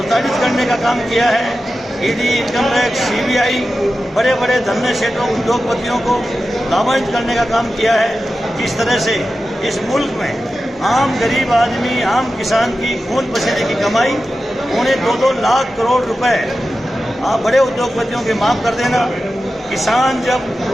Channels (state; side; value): normal; both; correlation 0.93